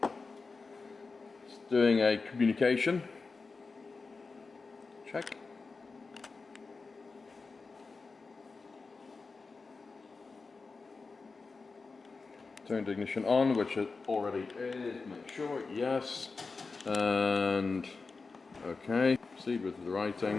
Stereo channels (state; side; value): quieter; right; 4.3 dB